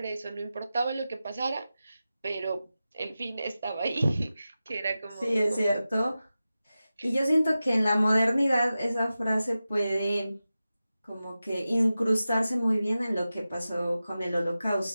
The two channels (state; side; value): inverted; both; correlation -0.94